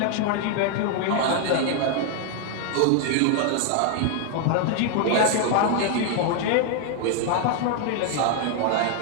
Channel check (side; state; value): both; different; correlation 0.00